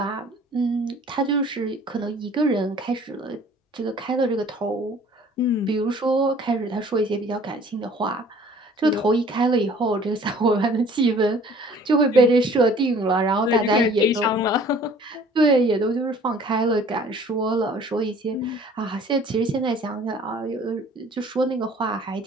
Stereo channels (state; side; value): normal; both; correlation 0.52